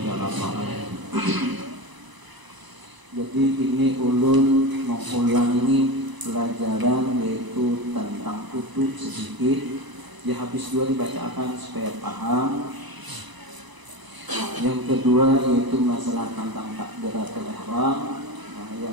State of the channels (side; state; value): left; late; 1.0 ms